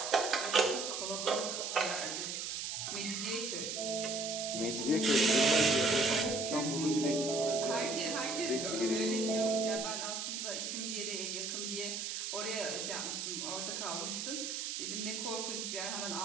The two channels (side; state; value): right; noise; hiss, 3 dB below the sound